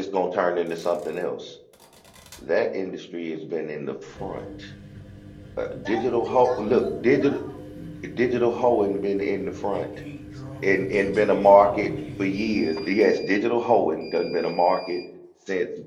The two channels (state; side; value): identical; both; correlation 1.00